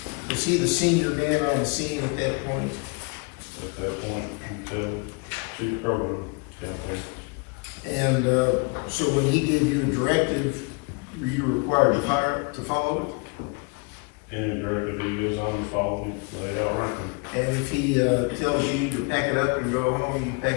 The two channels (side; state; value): right; quieter; 33.1 dB